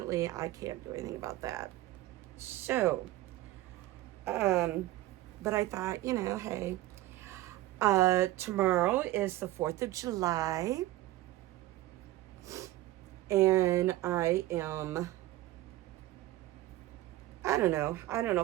I can't do anything about that. So, but I thought, hey, tomorrow is the 4th of July. And I don't know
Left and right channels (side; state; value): left; quieter; 16.4 dB